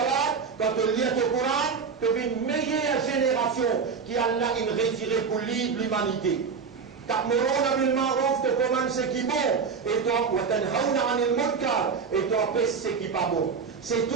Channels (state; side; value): quieter; left; 5.7 dB